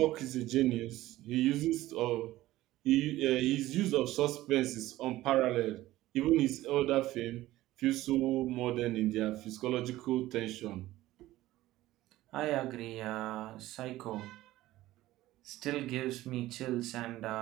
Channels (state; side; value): quieter; left; 16.2 dB